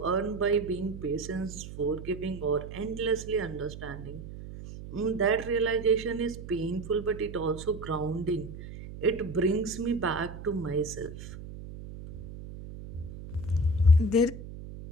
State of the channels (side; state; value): right; noise; hum, 12 dB below the sound